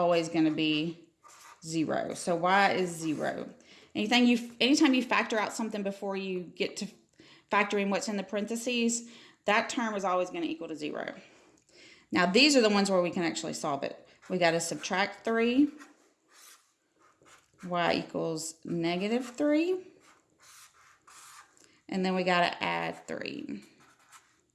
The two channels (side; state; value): both; identical; correlation 1.00